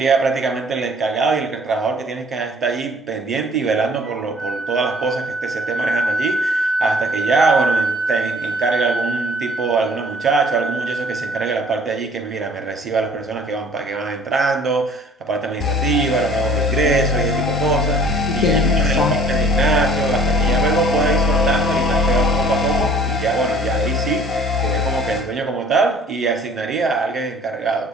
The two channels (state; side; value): normal; both; correlation 0.53